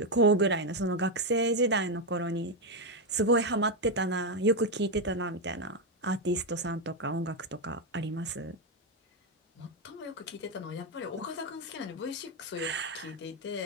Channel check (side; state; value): both; normal; correlation 0.05